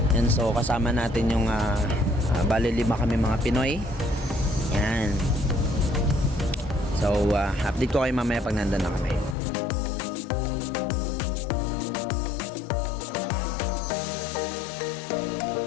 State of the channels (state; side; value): drops out; right; at 9.3 s